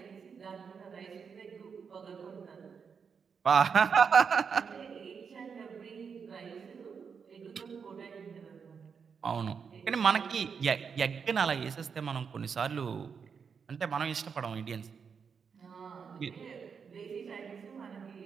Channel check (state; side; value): quieter; left; 6.2 dB